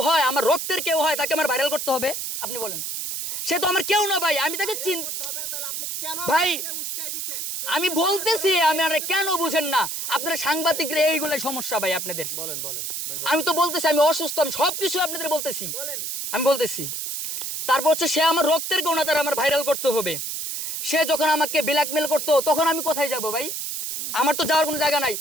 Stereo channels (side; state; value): right; noise; hiss, 4 dB below the sound